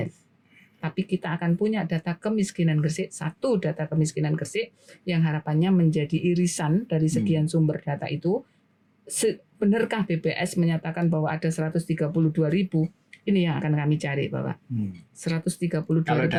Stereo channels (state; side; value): identical; both; correlation 1.00